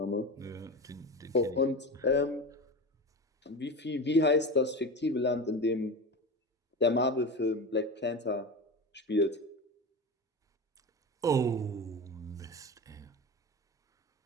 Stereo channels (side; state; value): both; normal; correlation 0.26